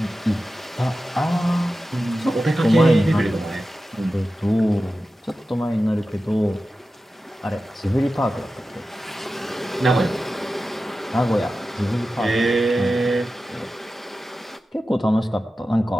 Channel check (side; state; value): both; normal; correlation 0.93